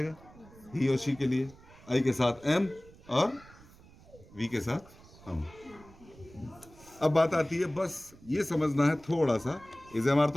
ही और शी के लिए आई के साथ एम और वी के साथ हम। अब बात आती है, बस ये समझना है थोड़ा सा, इज एम आर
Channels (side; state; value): right; noise; rumble, 23 dB below the sound